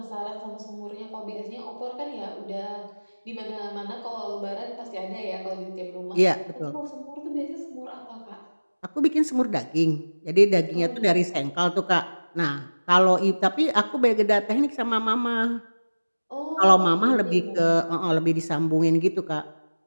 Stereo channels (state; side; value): inverted; both; correlation -1.00